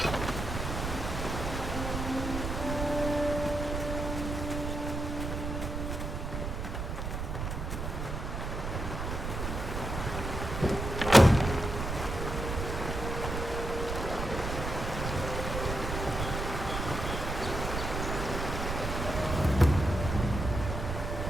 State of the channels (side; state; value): right; noise; rumble, 4 dB below the sound